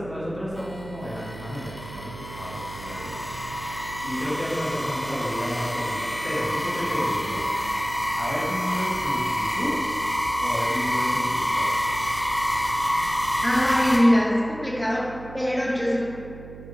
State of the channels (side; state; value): right; noise; hum, 14 dB below the sound